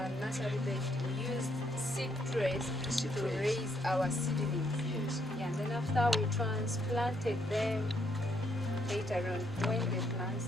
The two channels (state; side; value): normal; both; correlation 0.73